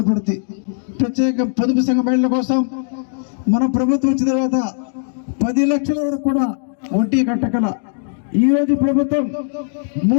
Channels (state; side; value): silent; right; digital silence